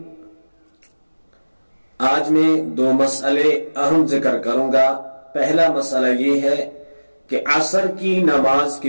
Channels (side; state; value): both; inverted; correlation -1.00